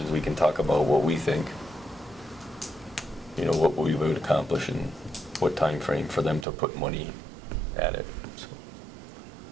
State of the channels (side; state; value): left; drops out; at 6.5 s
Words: we can talk about what we think, you know, what we would accomplish and what time frame for them to put money at it. So,